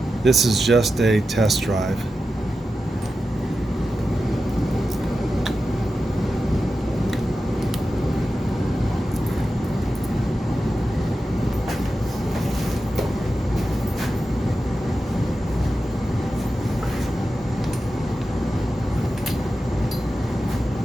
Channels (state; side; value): normal; both; correlation 0.91